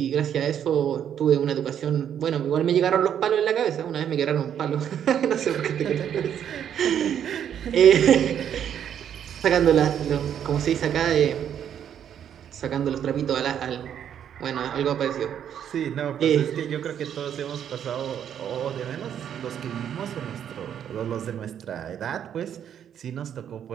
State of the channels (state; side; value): quieter; left; 9.2 dB